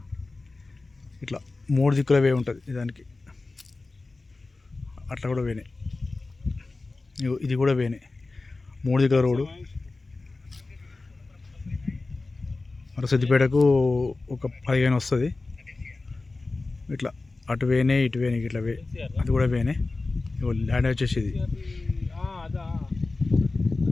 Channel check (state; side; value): quieter; right; 3.5 dB